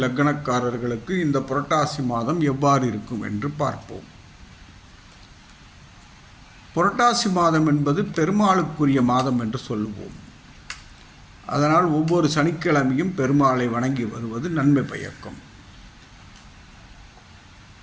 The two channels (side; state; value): both; identical; correlation 1.00